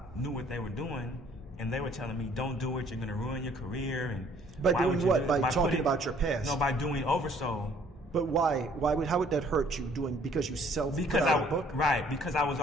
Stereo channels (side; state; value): both; normal; correlation 0.59